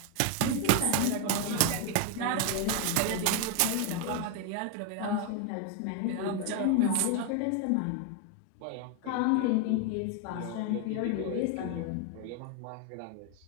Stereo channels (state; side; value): different; both; correlation 0.01